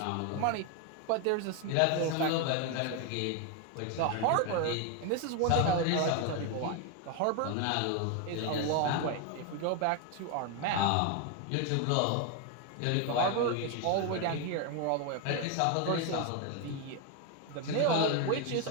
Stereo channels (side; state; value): both; different; correlation 0.01